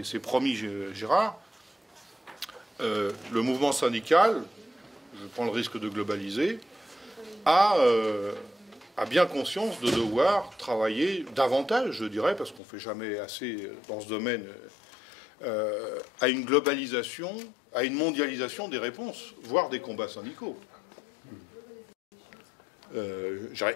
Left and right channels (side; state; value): right; drops out; at 12.6 s